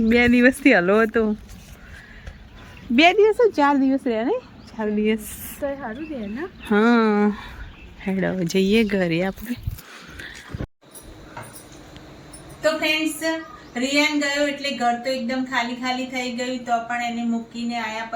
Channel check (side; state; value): both; identical; correlation 1.00